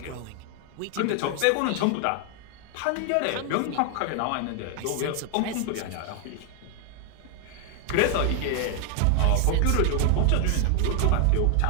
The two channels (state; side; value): different; both; correlation 0.00